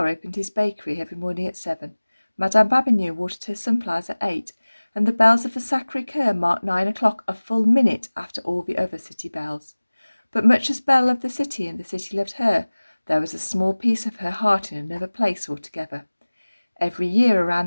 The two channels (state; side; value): inverted; both; correlation -1.00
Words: opened his bakery every morning at 7, Madame Babignon watered her sunflowers at 8, and the bells of the Sacré-Cœur marked 9 o'clock, a full minute after all the other city bells. But much as Belle loved the city and the city loved her, there was a small piece of her heart in another place altogether. Every year around